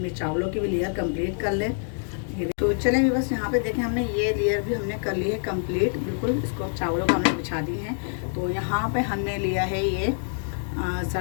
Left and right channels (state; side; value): silent; right; 61 dB below the other